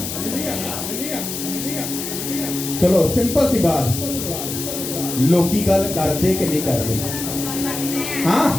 चलो सिंपल सी बात, लोकी गल करते कि नहीं करते? हाँ,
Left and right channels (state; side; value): noise; left; hiss, 6 dB below the sound